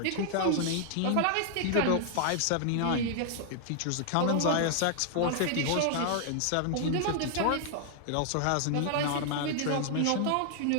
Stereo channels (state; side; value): different; both; correlation 0.00